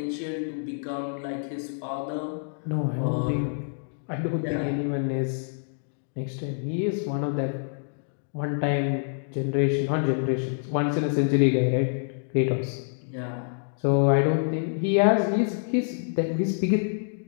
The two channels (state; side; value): silent; right; digital silence